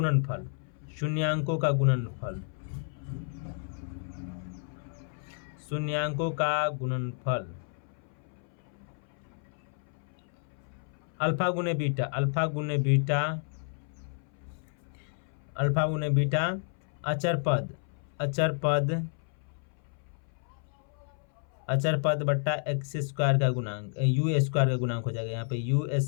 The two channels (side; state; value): right; silent; 57 dB below the other